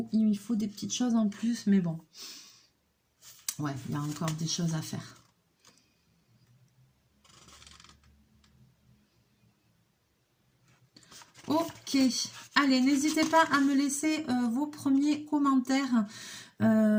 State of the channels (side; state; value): both; identical; correlation 1.00